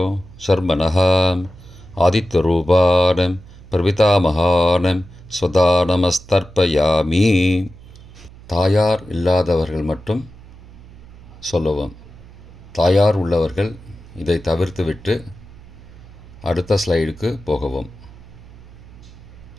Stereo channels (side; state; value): right; noise; hum, 20 dB below the sound